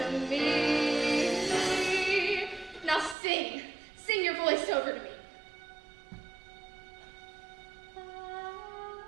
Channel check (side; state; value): left; drops out; at 3.2 s